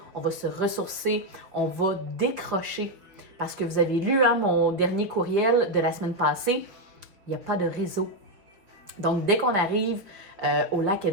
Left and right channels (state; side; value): late; left; 4.9 ms